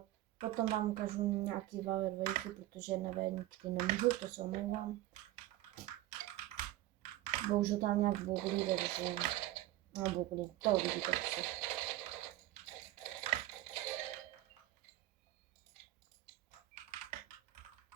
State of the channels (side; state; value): left; quieter; 15.6 dB